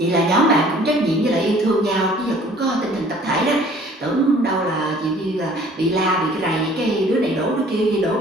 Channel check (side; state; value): both; normal; correlation 0.53